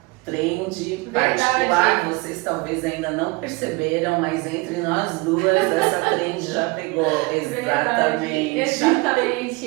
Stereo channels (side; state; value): left; quieter; 25.5 dB